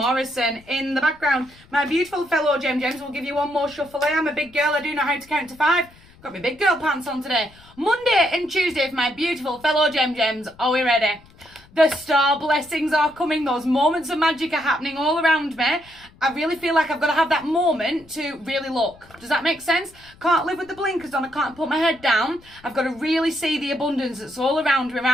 in the background. My beautiful fellow Gems will give you one more shuffle. I am a big girl, I do know how to count to 5. Got my big girl pants on today. Monday and Tuesday for my beautiful fellow Gems. Are we ready? The star blessings are coming. Those moments of magic are happening all around me. I really feel like I've got to have that moment to really look. Does that make sense? Can't live with the blinkers on. I can't put my head down. I've got to really see the abundance that's all around me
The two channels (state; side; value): noise; left; rumble, 26 dB below the sound